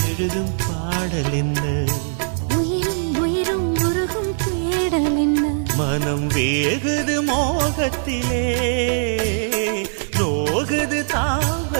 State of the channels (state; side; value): silent; left; digital silence